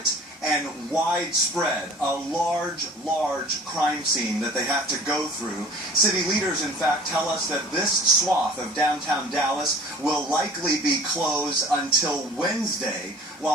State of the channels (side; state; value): both; normal; correlation 0.46